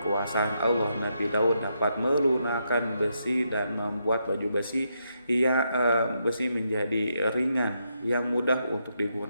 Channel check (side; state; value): both; inverted; correlation -0.80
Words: Allah, Nabi Daud dapat melunakkan besi dan membuat baju besi menjadi ringan yang mudah untuk